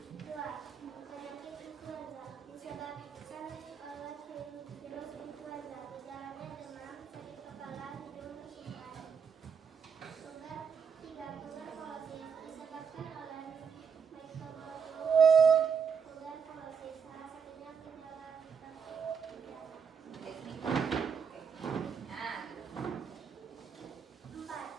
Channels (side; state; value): left; quieter; 6.5 dB